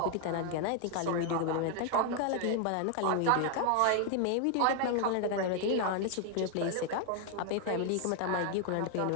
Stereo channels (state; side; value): different; both; correlation 0.00